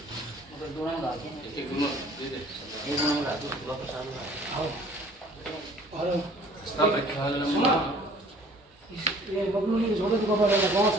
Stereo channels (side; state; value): both; normal; correlation 0.53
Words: एक दोनों दे दे। और स्नान प्रक्षालनम। ये बबलू ने छोड़े तो बाबा लगा कौन